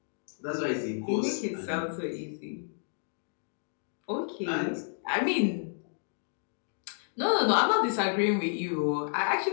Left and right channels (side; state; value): right; silent; digital silence